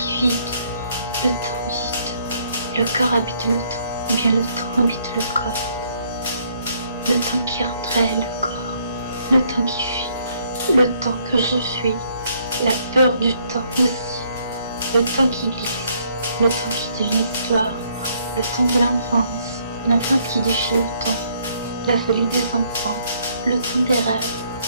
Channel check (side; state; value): both; inverted; correlation -0.68